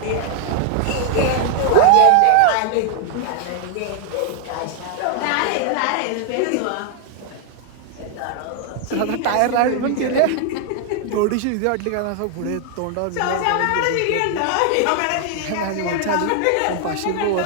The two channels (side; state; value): both; different; correlation 0.00